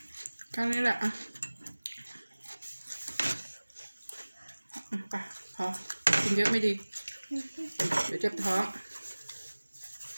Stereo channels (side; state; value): both; inverted; correlation -1.00